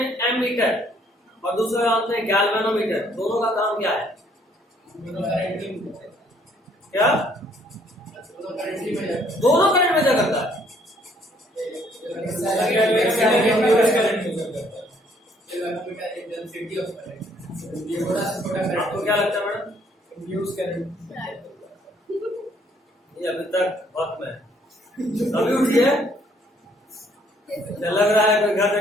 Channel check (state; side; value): normal; both; correlation 0.64